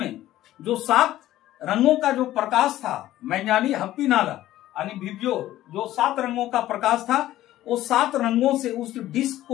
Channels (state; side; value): quieter; right; 14.4 dB